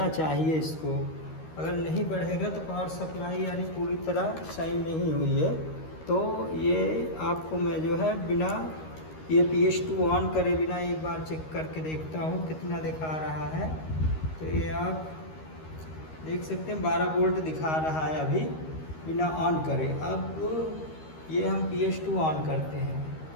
चाहिए इसको। अगर नहीं बढ़ेगा तो पावर सप्लाई यानी पूरी तरह सही नहीं हुई है। तो ये आपको मैं जो है बिना ये PS2 ऑन करे बिना एक बार चेक करके देखता हूँ कितना दिखा रहा है। तो ये आप देख सकते हैं 12 वोल्ट दिखा रहा है अभी बिना ऑन करे। अब ये हम PS2 ऑन करते हैं,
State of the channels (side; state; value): right; late; 13 ms